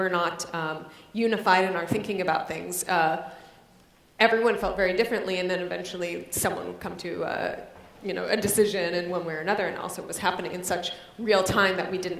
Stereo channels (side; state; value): both; identical; correlation 1.00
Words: not unified in our thinking about things. Everyone felt very differently, and then eventually someone would come to a decision in one way or another, and also it was happening in such real time that we